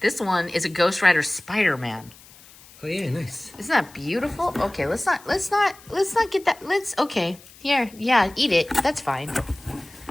This one is a Ghost Rider Spiderman. Oh yeah, nice. Isn't that beautiful? Okay, let's not get that. Here, yeah, eat it. That's fine.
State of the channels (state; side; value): noise; left; hiss, 23 dB below the sound